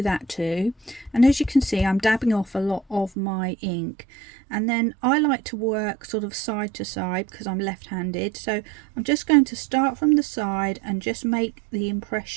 that too. And as you can see I'm dabbing off a lot of my ink, and then I like to work sort of side to side because I'm left-handed, so I'm just going to start from the side and just make the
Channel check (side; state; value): left; drops out; at 3.1 s